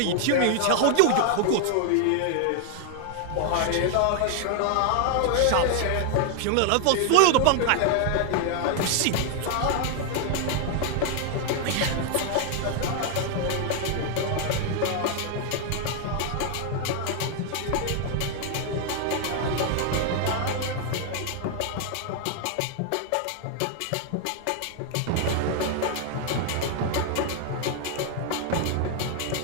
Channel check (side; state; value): both; different; correlation 0.00